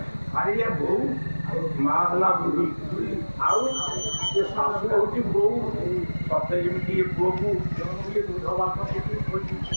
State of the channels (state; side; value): inverted; both; correlation -1.00